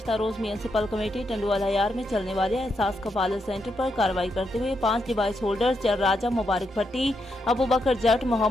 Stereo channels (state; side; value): normal; both; correlation 0.82